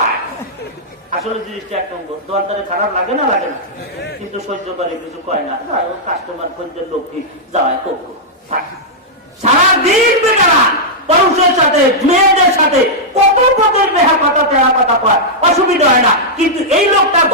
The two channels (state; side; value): normal; both; correlation -0.08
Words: আসলে জিনিসটা 1 নম্বর। দোকানদারে খারাপ লাগে না? লাগে না, কিন্তু সহ্য করে, কিছু কয় না। কাস্টমার খদ্দের লোক কি যাওয়ায় কোক সারাদিন বেকারা পুরুষের সাথে মেয়েদের সাথে কত পদের বেহা কথা, তেরা কথা কয়, অসুবিধা হয় না। কিন্তু এই লোকটা